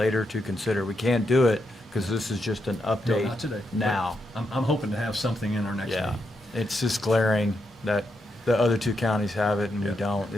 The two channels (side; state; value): both; normal; correlation 0.82